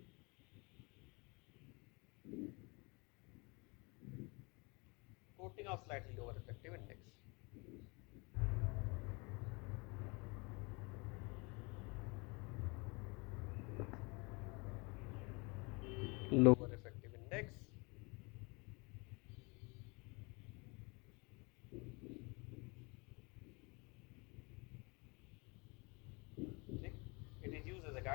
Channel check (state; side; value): quieter; right; 29.1 dB